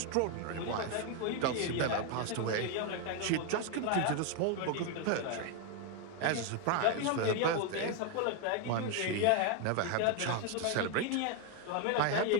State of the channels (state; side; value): different; both; correlation 0.01